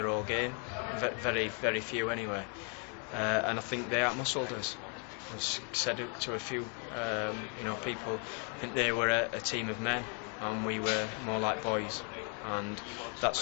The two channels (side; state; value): right; quieter; 38.3 dB